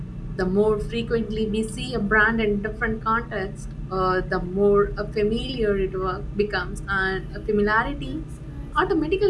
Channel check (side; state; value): both; identical; correlation 1.00